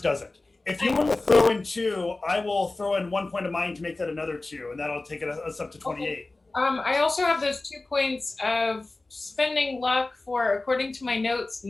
doesn't. If you want to throw in 2, I will throw in 1 point of mine to make that another 2, and that'll take us up to 28. Okay. I also have those 2 points of spending luck for, according to my notes,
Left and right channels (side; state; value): right; quieter; 3.1 dB